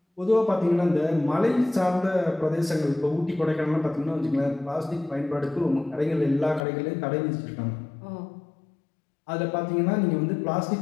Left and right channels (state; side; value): drops out; right; at 6.6 s